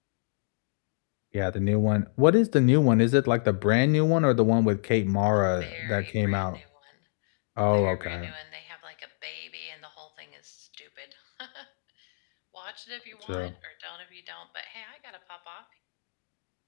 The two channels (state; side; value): silent; right; digital silence